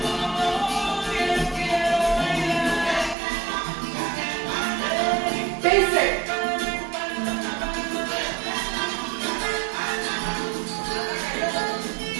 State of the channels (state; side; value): drops out; left; at 3.2 s